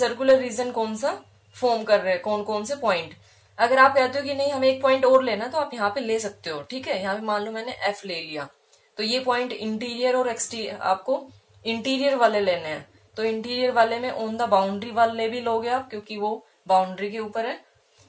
रीजन कौन सा फॉर्म कर रहे हैं, कौन कौन से पॉइंट। अगर आप कहते हो कि नहीं हमें एक पॉइंट और लेना, तो आप यहाँ पे ले सकते हो। ठीक है, यहाँ पे मान लो मैंने F ले लिया, तो ये पॉइंट इंटीरियर और एक्सटीरियर, आपको इंटीरियर वाले लेने हैं। तो इंटीरियर वाले में ऑन द बाउंड्री वाले भी लोगे आप, क्योंकि वो बाउंड्री के ऊपर है।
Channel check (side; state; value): both; identical; correlation 1.00